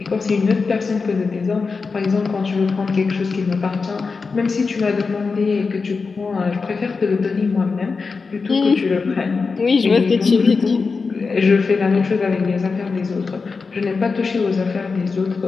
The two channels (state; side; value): quieter; right; 4.6 dB